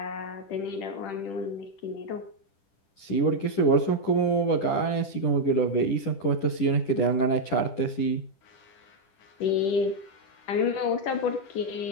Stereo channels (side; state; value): right; late; 10 ms